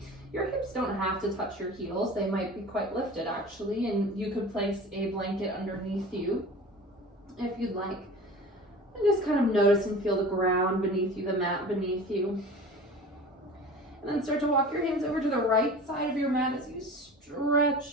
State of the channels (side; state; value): both; normal; correlation 0.38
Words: Your hips don't have to touch your heels. They might be quite lifted actually, and you could place a blanket underneath you if you'd like. And just kind of notice and feel the ground beneath you, the mat beneath you. And then start to walk your hands over to the right side of your mat as you